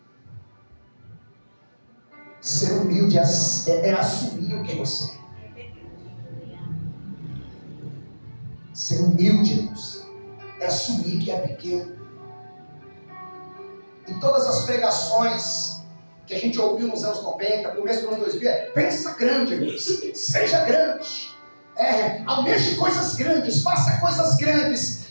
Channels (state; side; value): inverted; both; correlation -1.00